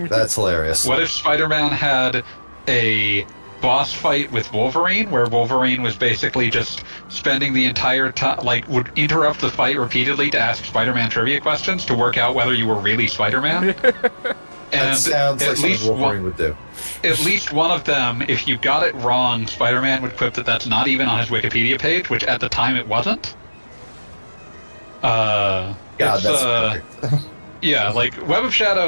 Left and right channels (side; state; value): both; inverted; correlation -1.00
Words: That's hilarious. What if Spider-Man had a boss fight with Wolverine, where Wolverine was basically just spending the entire time, like, would interrupt the fight repeatedly to ask Spider-Man trivia questions to work out whether you were really Spider-Man? That sounds like something Wolverine would do. At least one of them, if you got it wrong, Spider-Man would quip that that's not even on his Wikipedia page, which at the time it wasn't. God, that's perfect. Yeah, like Web of